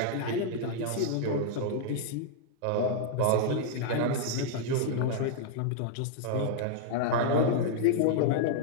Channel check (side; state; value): both; different; correlation -0.01